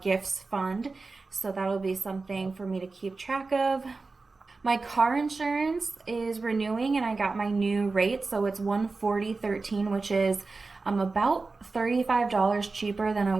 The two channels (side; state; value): left; quieter; 3.9 dB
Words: gifts fund. So that'll be something for me to keep track of. My car insurance is renewing, and I got my new rate, so it's $140.13, which is about $35 cheaper than